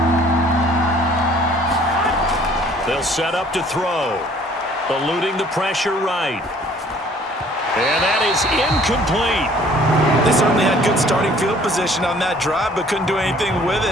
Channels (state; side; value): normal; both; correlation 0.56